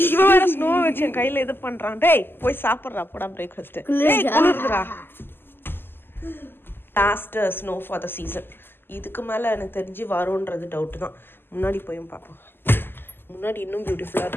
இவன் வேற ஸ்னோ வச்சு என் கையில இது பண்றான். டேய் போய் சாப்பிட்றா போடா பிரேக்ஃபாஸ்ட். குளிர்துடா. Last snow for the season. இதுக்கு மேல எனக்கு தெரிஞ்சு வரும்ன்றது டவுட் தான். முன்னாடி போயும் பார்ப்போம். முன்னாடி இன்னும் பியூட்டிஃபுல்லாக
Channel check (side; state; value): right; late; 0.10 ms